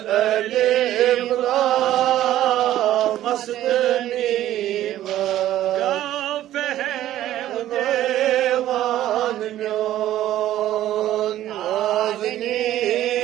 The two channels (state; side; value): quieter; left; 13.2 dB